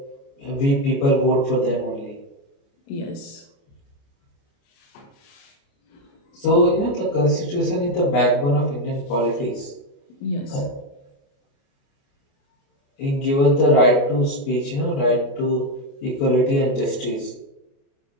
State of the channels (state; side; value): late; right; 29 ms